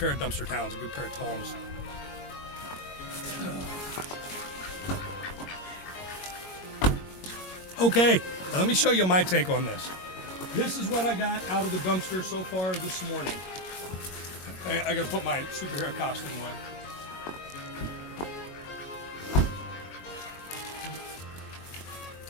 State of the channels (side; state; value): right; late; 21 ms